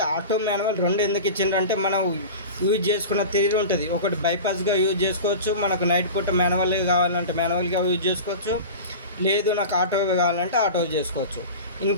ఆటో మాన్యువల్ రెండు ఎందుకు ఇచ్చిండ్రంటే మనం యూజ్ చేసుకున్న తీరు ఉంటుంది. ఒకటి బైపాస్గా యూజ్ చేసుకోవచ్చు, మనకు నైట్ పూట మాన్యువల్గా కావాలంటే మాన్యువల్గా యూజ్ చేసుకోవచ్చు, లేదు నాకు ఆటో కావాలంటే ఆటో చేసుకోవచ్చు.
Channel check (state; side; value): inverted; both; correlation -0.32